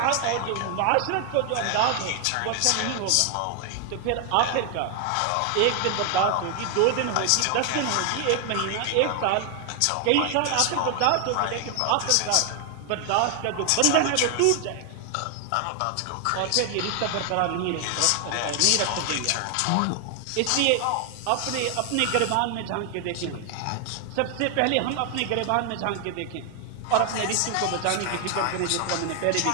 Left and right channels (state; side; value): different; both; correlation 0.00